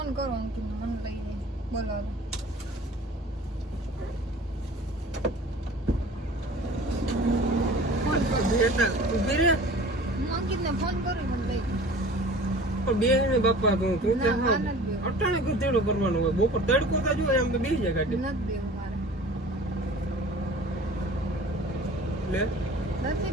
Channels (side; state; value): both; normal; correlation 0.43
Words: કરું અંકિતને, મને લઈને બોલાવો. ઉભી રે. હું અંકિતને ફોન કરું, મને લઈ પણ બે ને બાપા તું તું ના, માર નથી બેવું. અટાણે કુતેડું કરવાનું હોય. બપોર તડકો તો જોઈએ આમ તો બેસી જાય ગાડી. નથી બેવું મારે. લે નથી